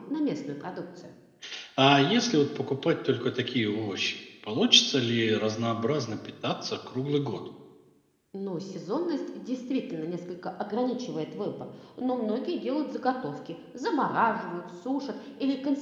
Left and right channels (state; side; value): identical; both; correlation 1.00